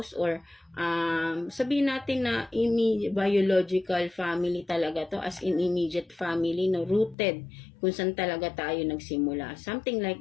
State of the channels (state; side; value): drops out; right; at 7.2 s